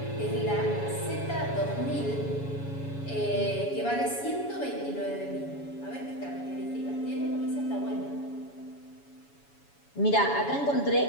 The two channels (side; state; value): right; late; 7.1 ms